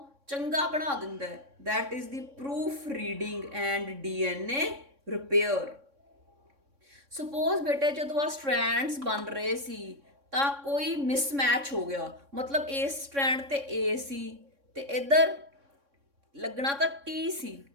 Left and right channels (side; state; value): left; late; 3.6 ms